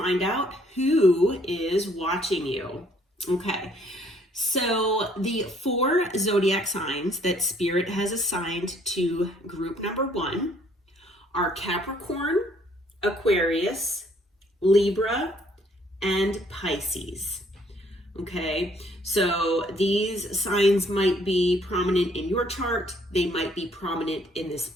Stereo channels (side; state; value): both; normal; correlation 0.64